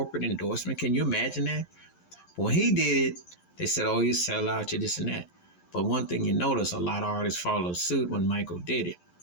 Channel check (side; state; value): right; late; 11 ms